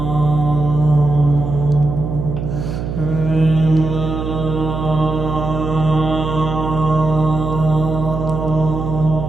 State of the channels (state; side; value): noise; right; hum, 5 dB below the sound